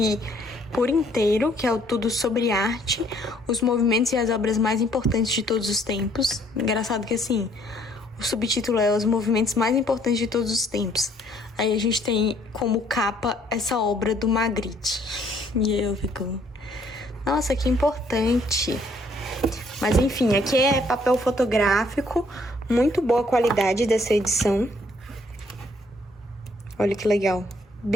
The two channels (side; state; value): both; normal; correlation 0.64